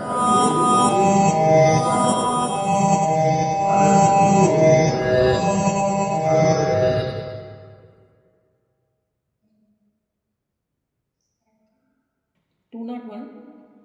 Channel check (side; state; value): both; identical; correlation 1.00